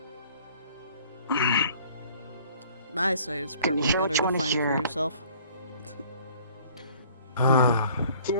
I say it's probably hear better what to you wanna find it hear? for yourself.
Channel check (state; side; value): inverted; both; correlation -0.55